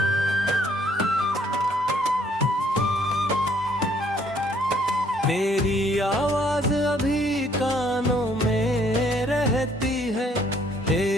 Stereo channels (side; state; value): both; normal; correlation 0.64